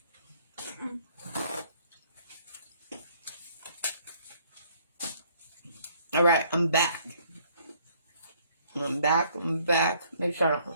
All right, I'm back. I'm back. Make sure I don't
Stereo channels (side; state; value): both; inverted; correlation -0.63